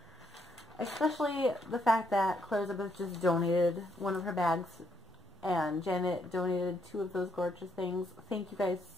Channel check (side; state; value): both; normal; correlation 0.74